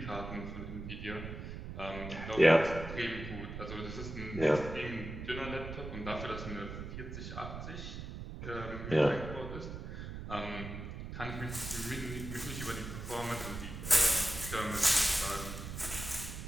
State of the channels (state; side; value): noise; right; rumble, 8 dB below the sound